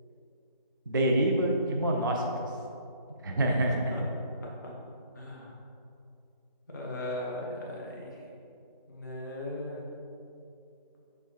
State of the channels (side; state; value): both; inverted; correlation -0.57